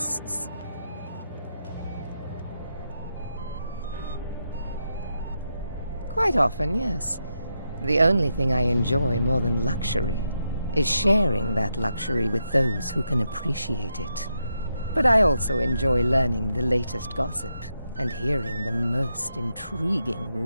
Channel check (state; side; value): inverted; both; correlation -0.84